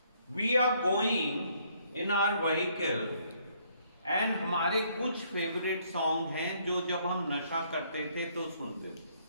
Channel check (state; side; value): inverted; both; correlation -0.67